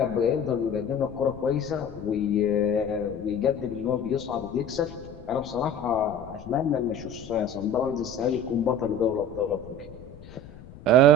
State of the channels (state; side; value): noise; left; rumble, 18 dB below the sound